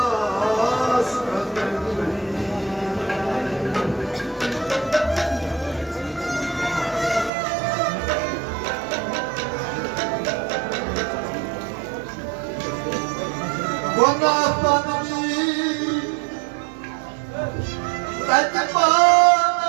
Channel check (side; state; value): left; drops out; at 7.3 s